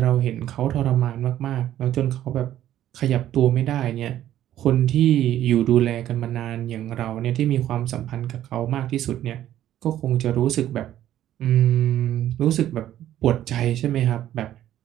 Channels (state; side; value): quieter; left; 12.3 dB